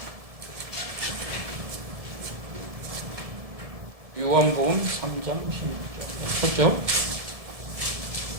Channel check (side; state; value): left; late; 1.7 ms